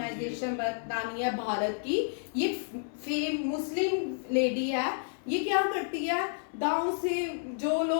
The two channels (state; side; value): silent; right; 57 dB below the other